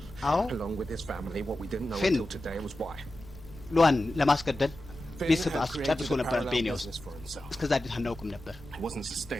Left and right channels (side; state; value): both; normal; correlation 0.93